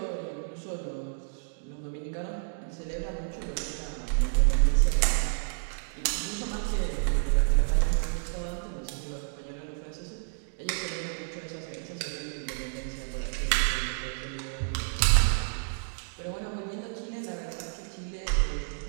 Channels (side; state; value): left; silent; digital silence